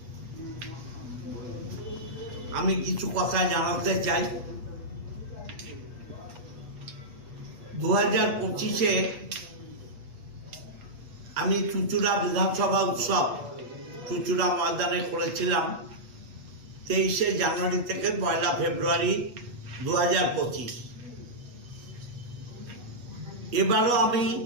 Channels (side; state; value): left; late; 8.2 ms